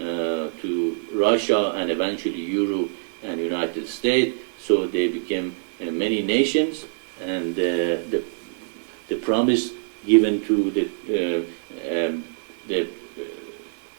Russia and eventually Europe and United States. So they became many nations, and the promise given to the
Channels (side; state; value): left; silent; digital silence